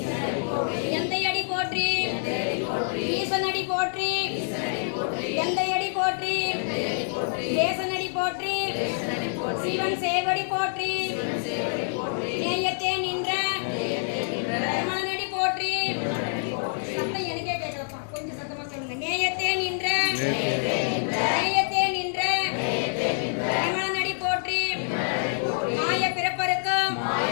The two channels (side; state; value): right; silent; 60 dB below the other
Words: எந்தையடி போற்றி ஈசனடி போற்றி எந்தையடி போற்றி தேசனடி போற்றி சிவன் சேவடி போற்றி நேயத்தே நின்ற மனநடி போற்றி சத்தம் எனக்கே கேட்கலப்பா கொஞ்சம் சத்தமா சொல்லுங்க நேயத்தே நின்ற நேயத்தே நின்ற மனநடி போற்றி மாய பிறப்பருக்கும்